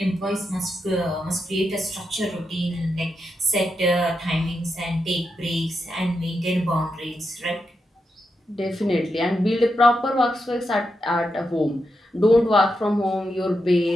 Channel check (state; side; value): normal; both; correlation 0.85